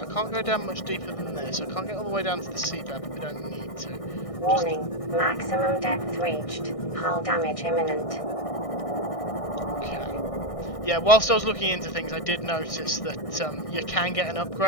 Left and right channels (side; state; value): right; late; 1.6 ms